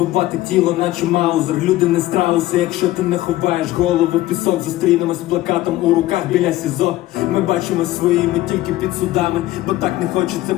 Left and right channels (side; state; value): right; quieter; 16.2 dB